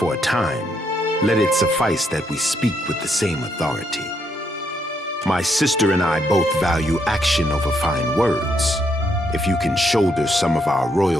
a time, let it suffice that we speak with the same authority. My sister and I both value action over fine words. If you can shoulder some of our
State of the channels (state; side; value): normal; both; correlation 0.76